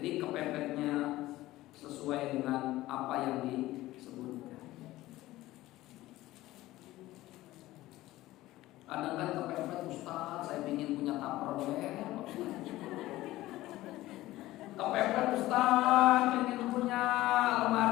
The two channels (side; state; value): right; quieter; 16.7 dB